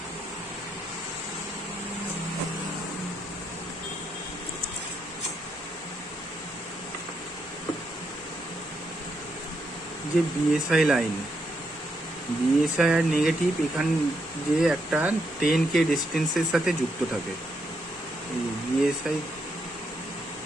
যে বিএসআই লাইন, বিএসআই আর নেগেটিভ এখান যে একটা 10K ডিস্টেন্সের সাথে যুক্ত থাকে। এই বিএসআই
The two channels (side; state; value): both; normal; correlation 0.79